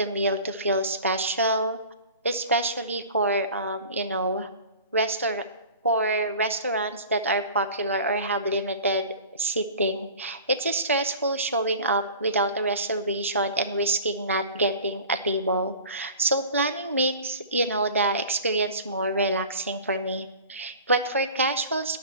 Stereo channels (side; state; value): both; inverted; correlation -0.41